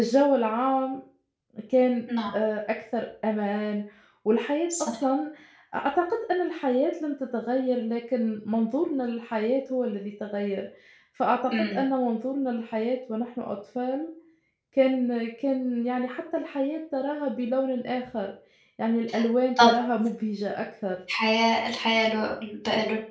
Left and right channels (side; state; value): both; identical; correlation 1.00